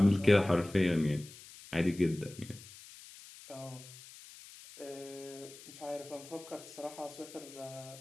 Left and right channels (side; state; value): left; noise; hiss, 18 dB below the sound